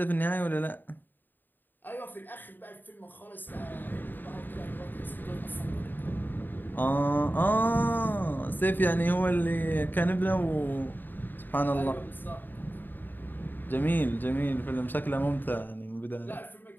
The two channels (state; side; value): late; right; 0.091 ms